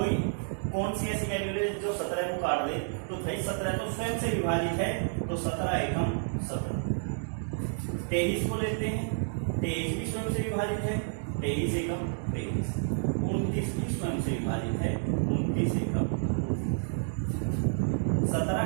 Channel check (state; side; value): silent; left; digital silence